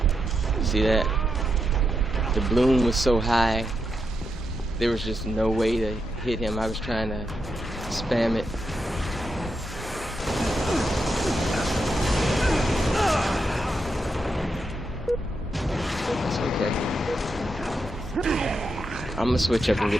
See that? The bloom was so high, there was just no way to hit him. I was trying to spam it. That's okay. I'm gonna switch up and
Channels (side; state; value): both; normal; correlation 0.84